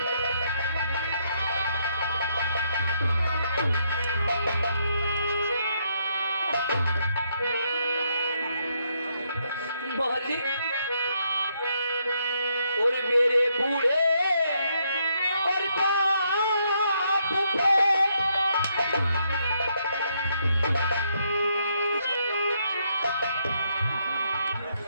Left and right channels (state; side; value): inverted; both; correlation -0.75